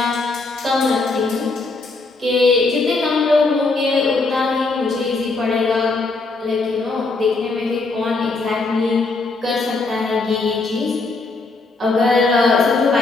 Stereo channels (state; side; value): quieter; right; 3.6 dB